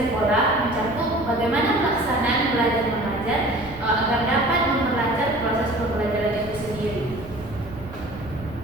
mencakup bagaimana pelaksanaan belajar mengajar agar dapat memperlancar proses pembelajaran itu sendiri.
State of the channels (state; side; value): noise; right; rumble, 16 dB below the sound